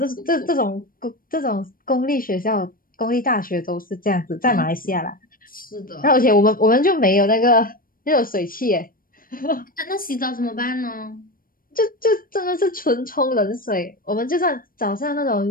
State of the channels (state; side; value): late; right; 0.41 ms